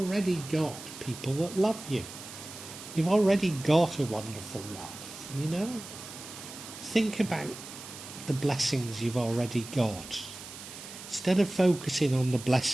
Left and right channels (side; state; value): right; noise; hiss, 13 dB below the sound